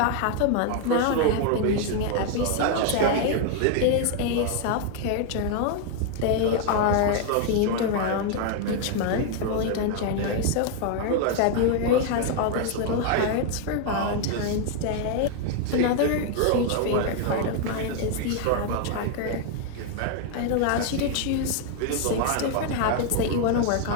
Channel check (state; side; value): different; both; correlation 0.00